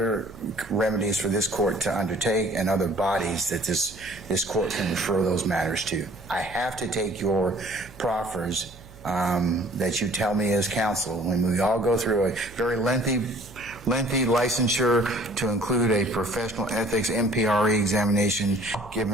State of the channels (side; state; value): right; noise; hum, 21 dB below the sound